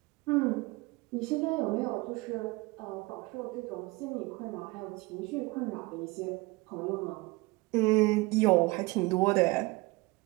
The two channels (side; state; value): left; quieter; 23.7 dB